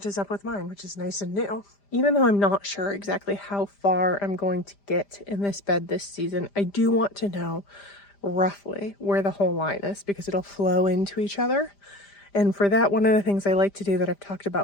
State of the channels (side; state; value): right; late; 5.0 ms